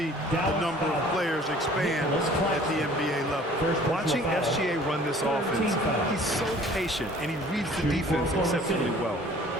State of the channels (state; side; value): normal; both; correlation 0.51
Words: the number of players expand at the NBA level. Watching SGA run this offense, he's so patient, and he reads the defense exceptionally well.